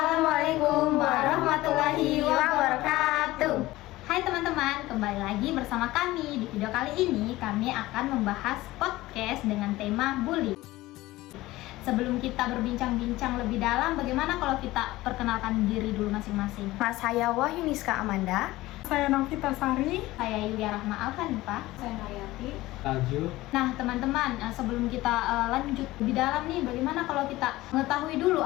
warahmatullahi wabarakatuh. Hai teman-teman, kembali lagi bersama kami. Di video kali ini kami akan membahas podcast dengan tema bully. Sebelum kita berbincang-bincang lebih dalam, bagaimana kalau kita perkenalkan diri dulu masing-masing? Saya Wahyuniska Amanda. Saya Novita Sari. Saya Yulia Rahma Alhanifah. Saya Nayati. Taju. Nah teman-teman, sebelum kita lanjut lebih dalam nih, bagaimana kalau kita mengetahui dulu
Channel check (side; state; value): right; quieter; 18.0 dB